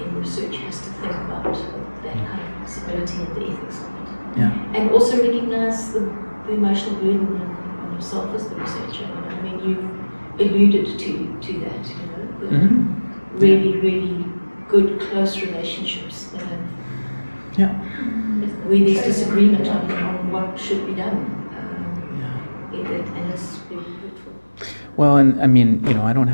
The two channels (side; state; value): both; inverted; correlation -1.00